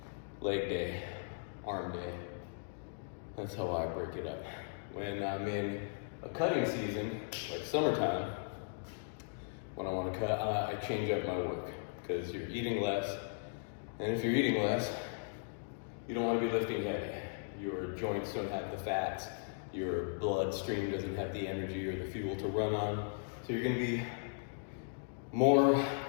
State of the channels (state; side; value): silent; right; digital silence